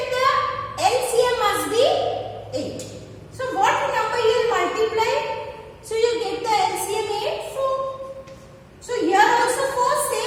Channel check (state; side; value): identical; both; correlation 1.00